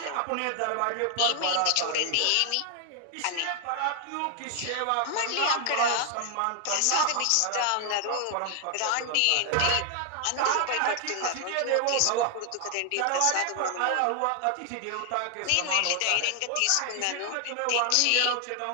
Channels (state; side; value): different; both; correlation 0.00